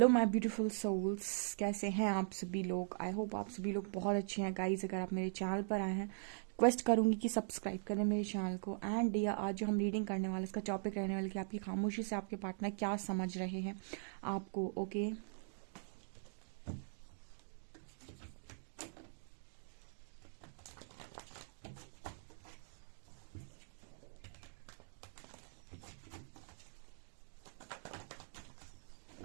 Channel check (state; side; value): silent; left; digital silence